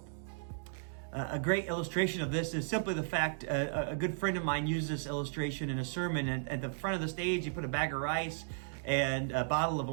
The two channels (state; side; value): silent; left; digital silence